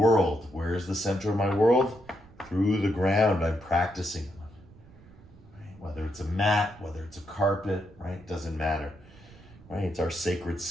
Where is the center of my world? Through the ground I'm practicing on, right? Whether it's a mat, whether it's a carpet, right? Doesn't matter, right? It's our sacred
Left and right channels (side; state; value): right; noise; rumble, 23 dB below the sound